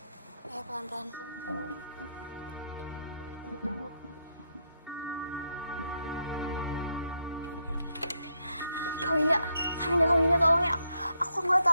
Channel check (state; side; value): inverted; both; correlation -0.79